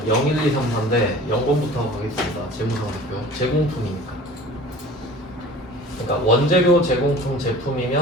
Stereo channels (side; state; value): both; normal; correlation 0.43